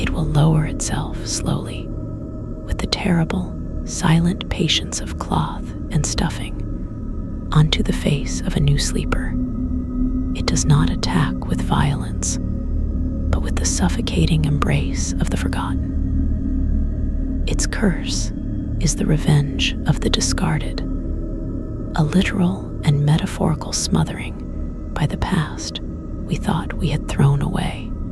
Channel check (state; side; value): identical; both; correlation 1.00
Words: will lower itself slowly, with the terrible, silent patience of cloth and stuffing, onto the face of a new sleeper. It does not attack with violence, but with the suffocating embrace of the forgotten. Its curse is the revenge of the discarded, a literal and metaphorical smothering by the past we thought we had thrown away.